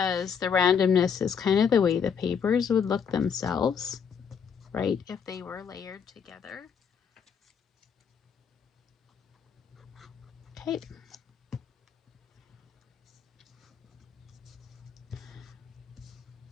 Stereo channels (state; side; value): quieter; right; 7.0 dB